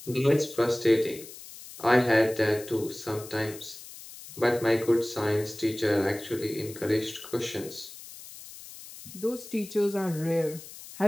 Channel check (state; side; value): noise; left; hiss, 15 dB below the sound